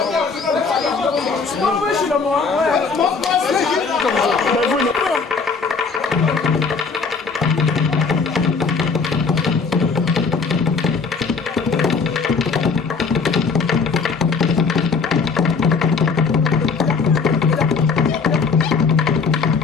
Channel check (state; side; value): quieter; right; 4.9 dB